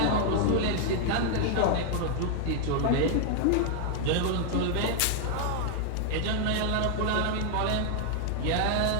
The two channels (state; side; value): different; both; correlation 0.00